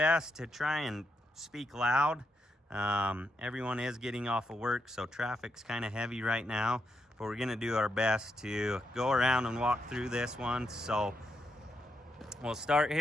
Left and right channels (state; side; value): normal; both; correlation 0.81